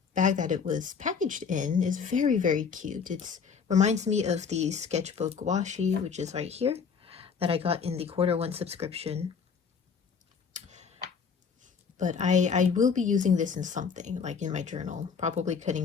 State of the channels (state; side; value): quieter; right; 6.1 dB